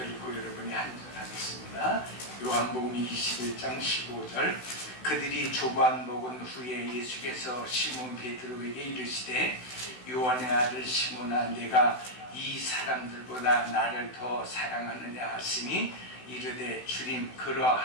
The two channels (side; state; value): right; late; 16 ms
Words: 읽고 여러분이 한 절 하겠습니다. 요한복음 21장 15절. 그들이 조반 먹은 후에 예수께서 시몬 베드로에게 이르시되 요한의 아들 시몬아 내가 이 사람들보다 나를 더 사랑하느냐 하시니 이르되 주님